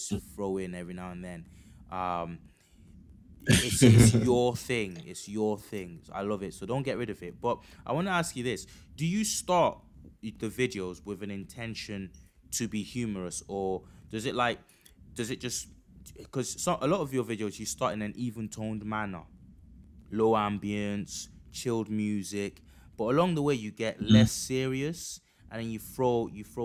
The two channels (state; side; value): identical; both; correlation 1.00